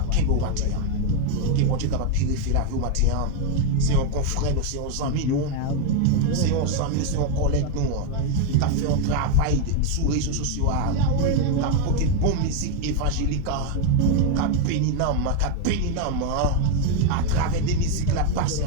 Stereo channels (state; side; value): different; both; correlation 0.01